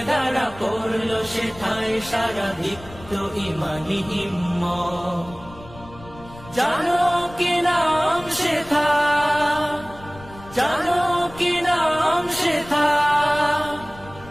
দাঁড়া পড়ল সেথায় সারা দীপ্ত ইমানি হিম্মত। জানো কি নাম সেথা, জানো কি নাম সেথা,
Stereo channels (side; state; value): left; noise; rumble, 19 dB below the sound